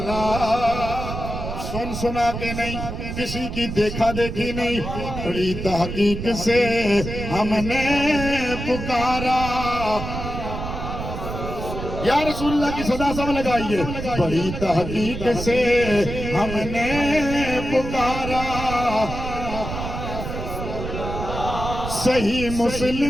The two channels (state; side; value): noise; right; rumble, 6 dB below the sound